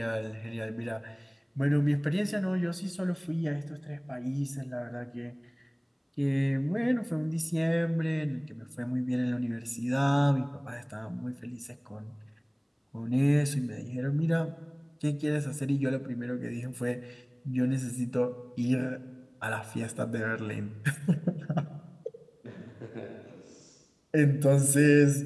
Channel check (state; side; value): identical; both; correlation 1.00